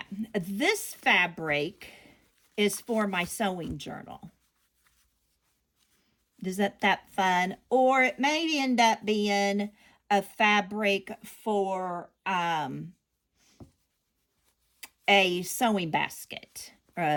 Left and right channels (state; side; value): identical; both; correlation 1.00